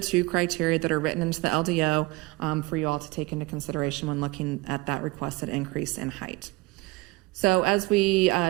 criteria that are written into the LDO for you all to take into consideration when looking at that requested increase in height. So as we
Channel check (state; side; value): quieter; left; 22.5 dB